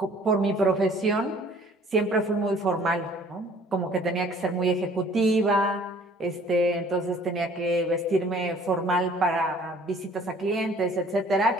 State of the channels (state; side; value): normal; both; correlation 0.54